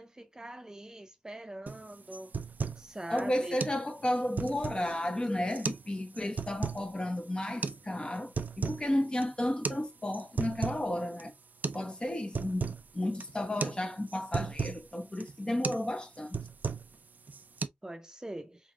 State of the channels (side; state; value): both; normal; correlation 0.88